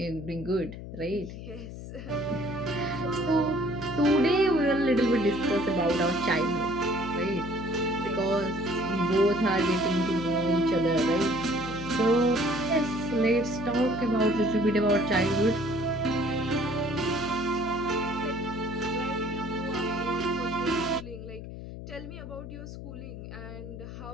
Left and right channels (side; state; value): left; noise; hum, 11 dB below the sound